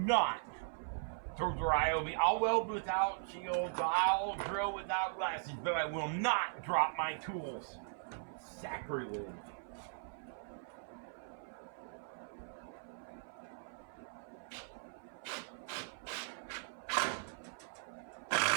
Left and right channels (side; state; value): left; silent; 52 dB below the other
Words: throw the Ryobi. I'll weld without shields. I'll drill without glasses, but I will not drop my tools. Sacrilege.